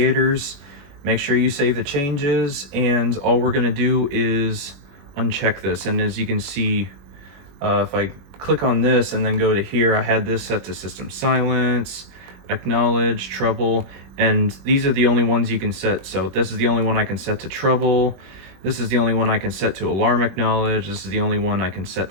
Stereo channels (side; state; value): left; late; 21 ms